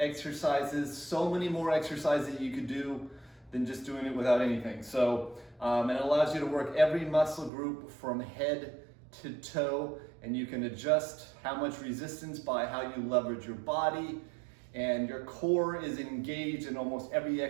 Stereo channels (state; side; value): drops out; left; at 7.5 s